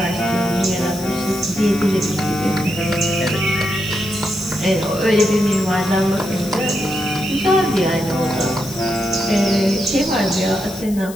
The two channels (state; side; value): noise; left; hiss, 16 dB below the sound